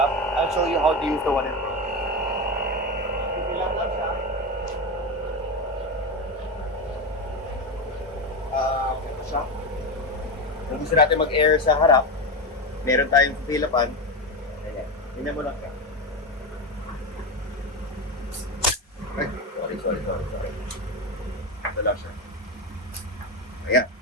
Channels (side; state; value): both; normal; correlation 0.16